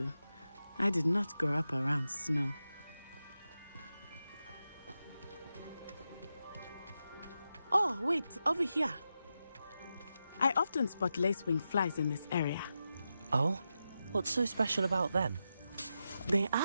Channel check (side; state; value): both; inverted; correlation -0.89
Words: I did not grow up around snow. Oh, wait, over here. I often spot lacewing flies in this area. Oh? What's so special about them? They